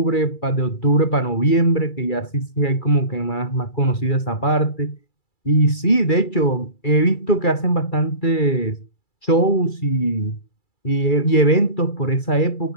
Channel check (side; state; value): right; late; 2.3 ms